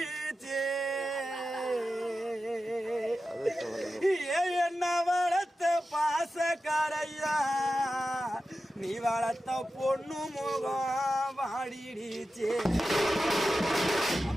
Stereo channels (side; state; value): both; normal; correlation 0.92